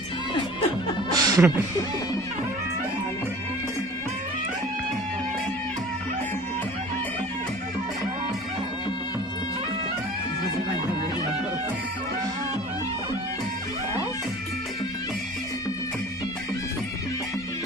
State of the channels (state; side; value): normal; both; correlation 0.44